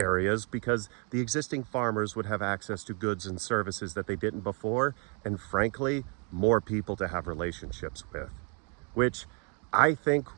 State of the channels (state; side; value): quieter; left; 36.1 dB